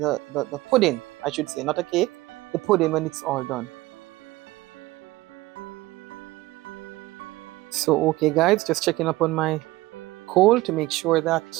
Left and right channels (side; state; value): left; quieter; 18.9 dB